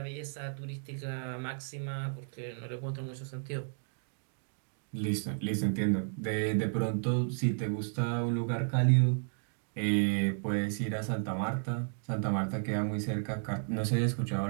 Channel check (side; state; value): left; silent; digital silence